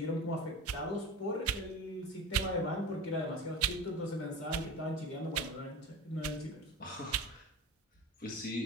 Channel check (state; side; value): normal; both; correlation 0.31